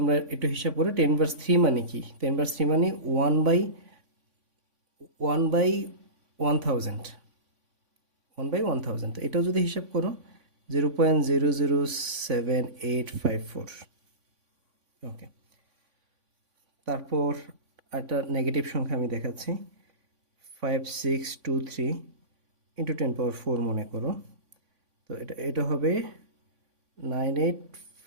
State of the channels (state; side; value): late; left; 3.5 ms